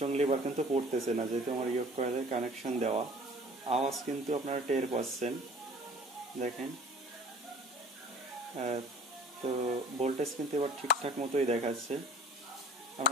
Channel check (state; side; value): normal; both; correlation 0.48